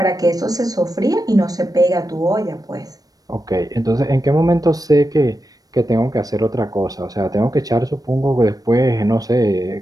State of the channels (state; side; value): late; left; 0.18 ms